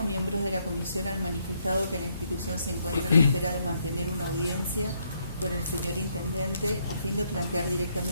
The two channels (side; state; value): both; inverted; correlation -0.73